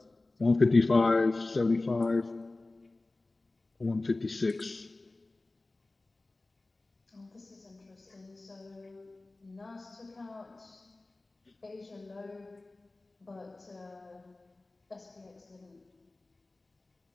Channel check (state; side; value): quieter; right; 3.1 dB